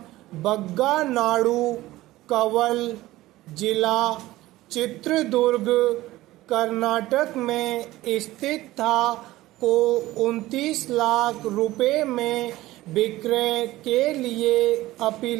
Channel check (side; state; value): left; quieter; 17.1 dB